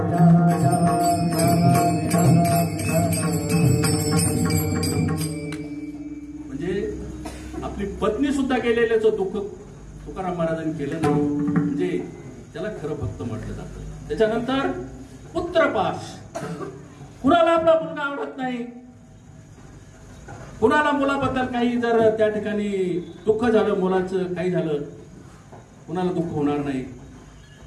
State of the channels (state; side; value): identical; both; correlation 1.00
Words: म्हणजे आपली पत्नी सुद्धा गेलेल्याचं दुःख तुकाराम महाराजांनी केलं नाही, म्हणजे त्याला खरं भक्त म्हटलं जातं. त्याच्यानंतर पुत्रपाश. कुणाला आपला मुलगा आवडत नाही, कुणाला मुलाबद्दल काही जर त्या ठिकाणी दुःख झालं, मुलाचं काही झालं, कुणाला दुःख होणार नाही.